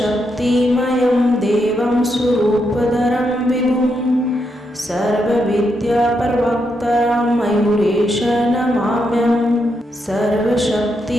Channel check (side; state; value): both; normal; correlation 0.81